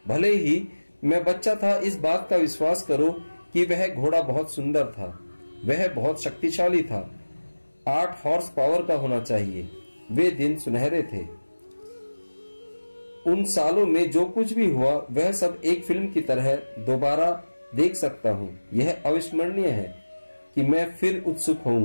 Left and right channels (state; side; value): inverted; both; correlation -1.00